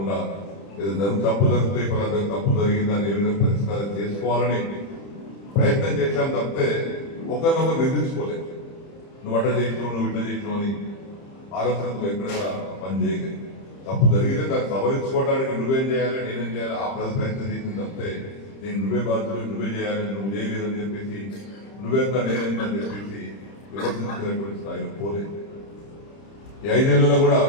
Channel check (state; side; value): late; right; 30 ms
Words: ఏదైనా తప్పు జరిగితే పలానా తప్పు జరిగిందని ఏ విధంగా పరిష్కారం చేసుకోవాలని ప్రయత్నం చేశాం తప్పితే ఒకరినొకరు నిర్దించుకోలేదు. నువ్వు అట్లా చేసినావు, నువ్వు ఇట్లా చేసినావు అని ఆలోచనతో ఎక్కడ పని చేయలేదు. తప్పు జరిగితే దాన్ని సవరించుకోవడానికి నువ్వేం చేయాలి, నేనేం చేయాలి, ఆ ప్రయత్నం చేసింది తప్పితే నేను నువ్వే బాధ్యులు, నువ్వే చేయాలి, నువ్వు చేయలేదని చెప్పేసి నువ్వెంత నేనెంత అని చెప్పేసి విమర్శించుకునేటువంటి స్థాయిలో పోలేదు. ఈ 5 ఏళ్లలో కూడా